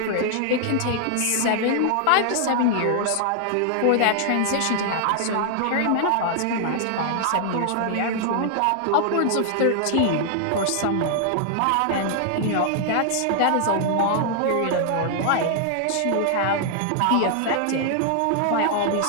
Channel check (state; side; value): different; both; correlation 0.00